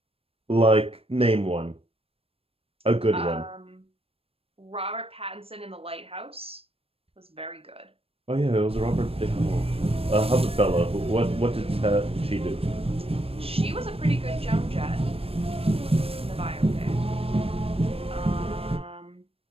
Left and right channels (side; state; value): left; late; 0.28 ms